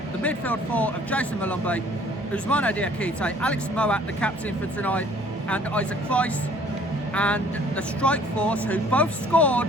the midfield 4 of Jason Malumbi, Ousmane Diakite, Alex Moat, the captain for tonight, and Isaac Price, and the strike force, who both scored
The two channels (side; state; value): both; normal; correlation 0.56